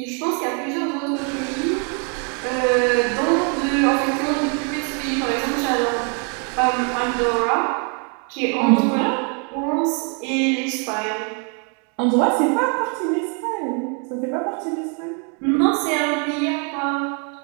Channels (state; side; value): quieter; left; 38.8 dB